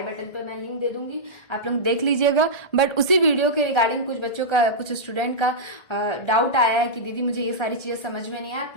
बटन पे मैं लिंक दे दूंगी, आप लोग देख लीजिएगा। बट उसी वीडियो के रिगार्डिंग कुछ बच्चों का, कुछ स्टूडेंट का डाउट आया है कि दीदी मुझे ये सारी चीजें समझ में नहीं आया,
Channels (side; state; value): right; late; 1.4 ms